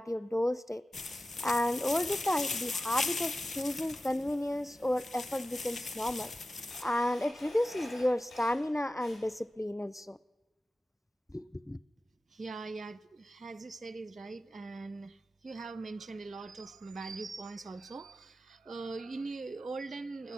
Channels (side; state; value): both; normal; correlation 0.94